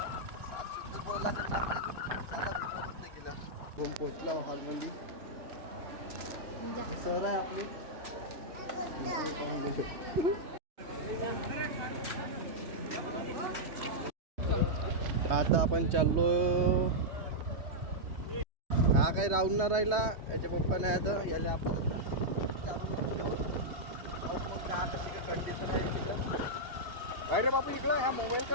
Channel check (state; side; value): late; left; 3.2 ms